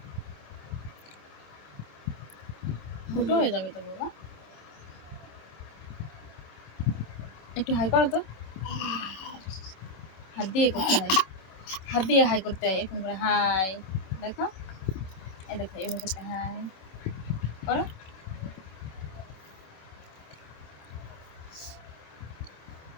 ফুটো হয়ে যাবে তো বাবা, একটু হাই করো তো। হাত দিয়ে করতে হয়, হাত দিয়ে হাই করতে হয়, এরকম করে হাই। দেখো এই দেখো এভাবে করতে হাই করো।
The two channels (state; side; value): late; right; 27 ms